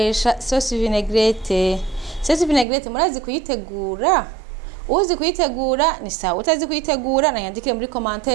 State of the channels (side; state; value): left; drops out; at 2.7 s